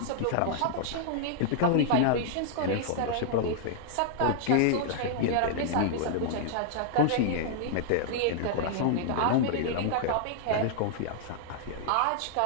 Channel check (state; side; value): different; both; correlation -0.01